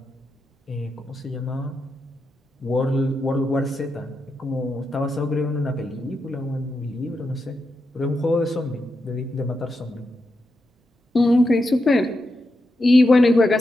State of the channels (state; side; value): normal; both; correlation 0.86